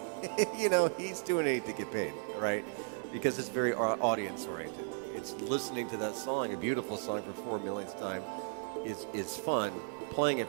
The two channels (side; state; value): left; silent; 54 dB below the other